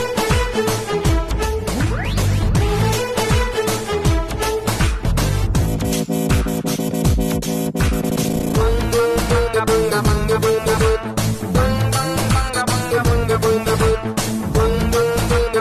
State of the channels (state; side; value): identical; both; correlation 1.00